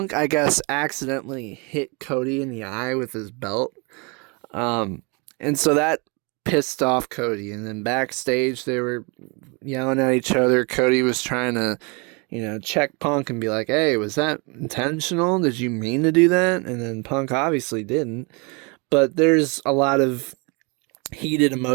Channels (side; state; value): left; quieter; 31.2 dB